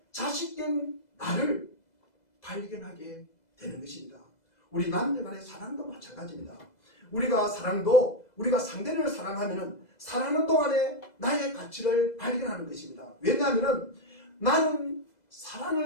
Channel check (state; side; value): late; right; 2.0 ms